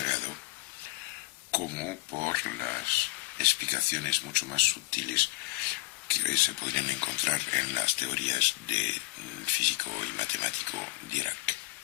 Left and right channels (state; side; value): quieter; right; 20.9 dB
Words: como por las explicaciones mucho más sutiles que se podrían encontrar en las teorías de físico y matemático Dirac.